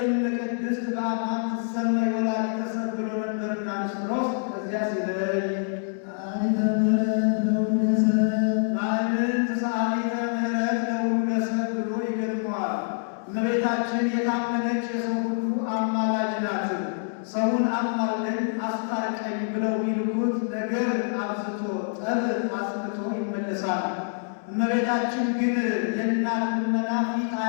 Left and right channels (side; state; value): right; silent; digital silence